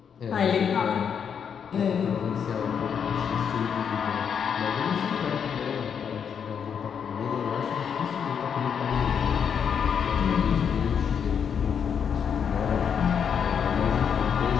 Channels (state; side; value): quieter; right; 7.4 dB